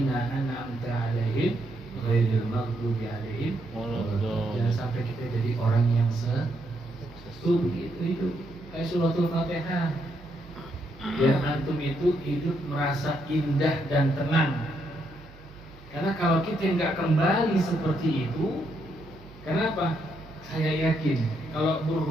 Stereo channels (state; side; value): noise; right; hum, 21 dB below the sound